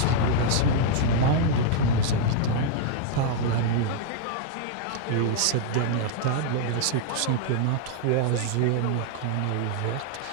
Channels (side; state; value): both; different; correlation 0.00